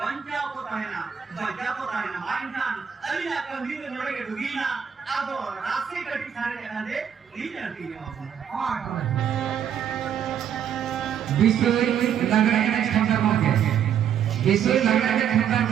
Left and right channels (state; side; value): quieter; left; 8.6 dB